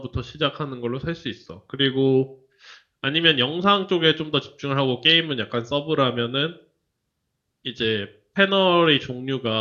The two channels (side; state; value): both; identical; correlation 1.00